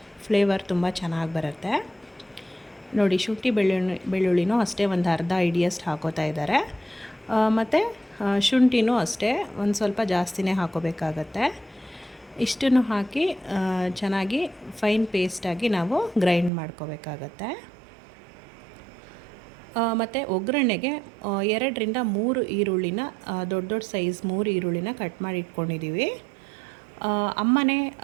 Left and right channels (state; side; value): drops out; left; at 16.5 s